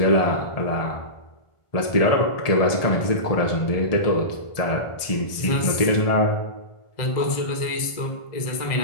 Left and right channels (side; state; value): right; late; 1.4 ms